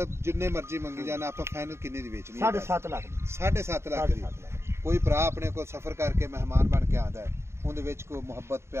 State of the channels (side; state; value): left; late; 0.13 ms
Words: जिन्ने मर्जी मंगी जाना आप फाइनल किन्नी दी बेचनी? 7.5 लाख 7.5 लाख दी। कोई भरा अपने को सफर करके मेहमान बन के आंदा है उहदे विच कोई मोहब्बत